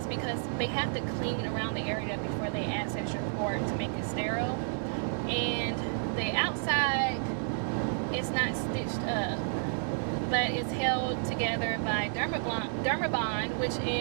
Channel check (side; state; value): left; silent; digital silence